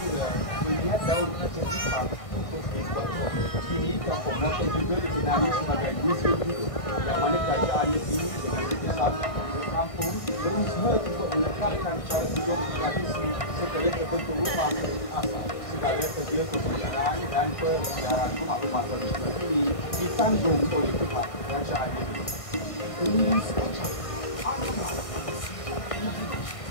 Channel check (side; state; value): right; late; 1.6 ms